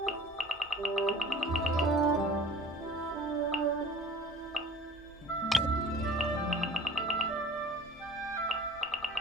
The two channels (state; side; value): normal; both; correlation 0.46